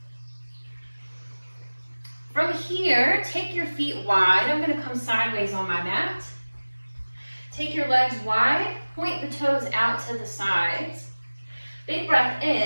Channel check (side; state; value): both; inverted; correlation -1.00